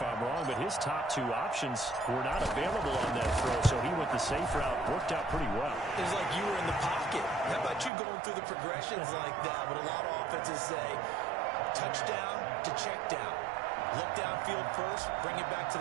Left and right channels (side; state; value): left; drops out; at 7.9 s